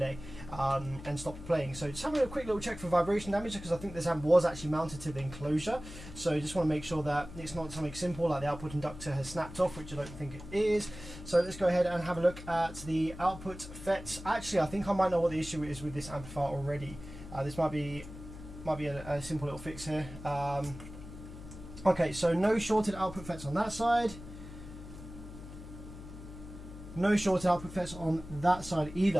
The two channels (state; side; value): noise; left; hum, 13 dB below the sound